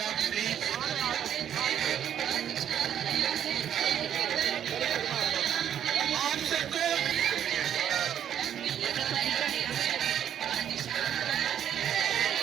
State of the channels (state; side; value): quieter; left; 9.7 dB